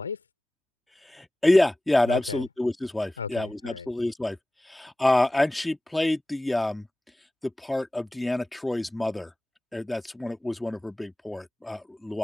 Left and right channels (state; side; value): normal; both; correlation 0.96